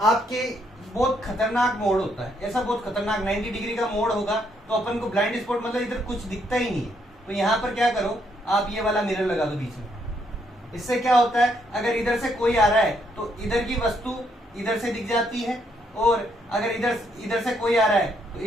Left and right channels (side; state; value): both; normal; correlation 0.73